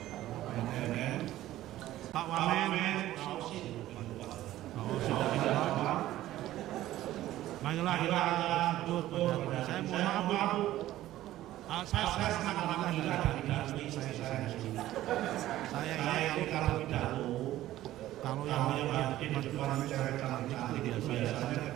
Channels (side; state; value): left; quieter; 14.5 dB